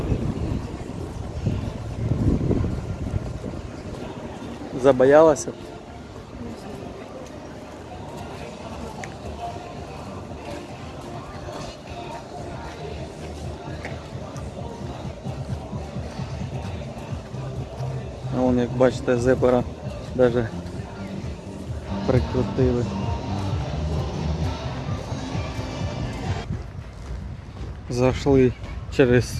Забоялась? А вон, як бачите, зебра даже прикрутили. Зашли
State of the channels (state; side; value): identical; both; correlation 1.00